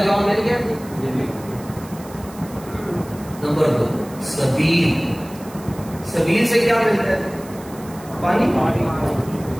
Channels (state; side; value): noise; right; hiss, 20 dB below the sound